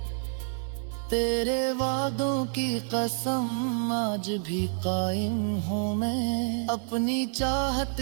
तेरे वादों की कसम आज भी कायम हूँ मैं, अपनी चाहत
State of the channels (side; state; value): left; silent; 59 dB below the other